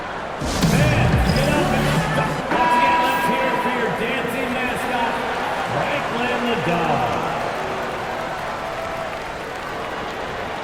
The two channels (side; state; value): both; identical; correlation 1.00